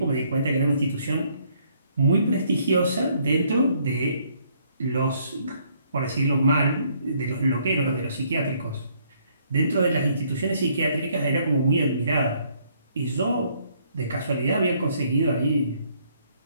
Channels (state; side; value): inverted; both; correlation -0.67